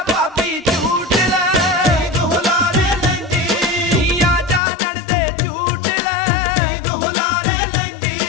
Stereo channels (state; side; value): drops out; right; at 4.6 s